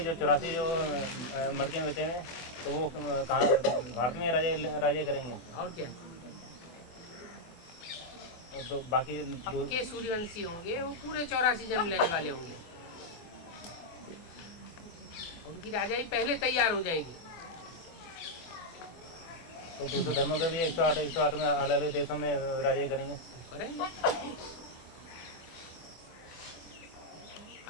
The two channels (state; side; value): late; right; 24 ms